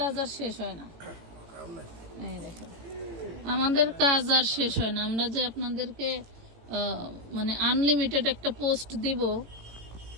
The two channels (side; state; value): left; late; 18 ms